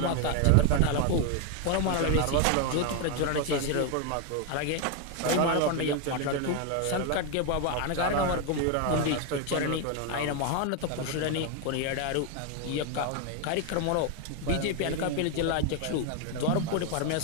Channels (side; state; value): both; different; correlation 0.01